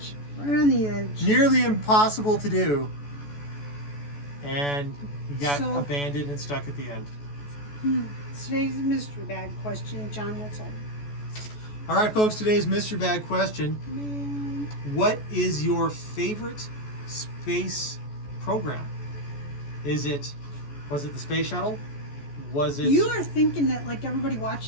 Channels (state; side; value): late; right; 14 ms